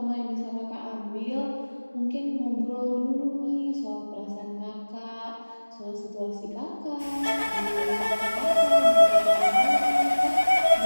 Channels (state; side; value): inverted; both; correlation -1.00